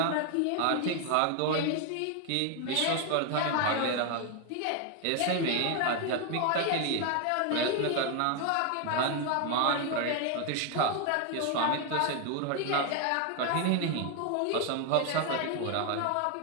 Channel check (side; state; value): both; different; correlation 0.01